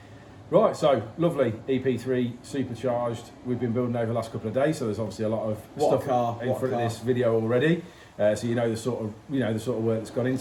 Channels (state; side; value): identical; both; correlation 1.00